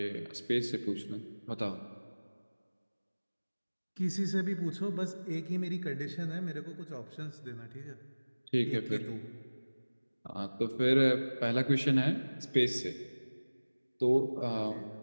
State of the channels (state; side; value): inverted; both; correlation -1.00